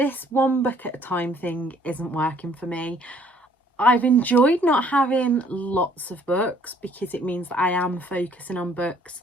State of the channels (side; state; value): both; normal; correlation 0.61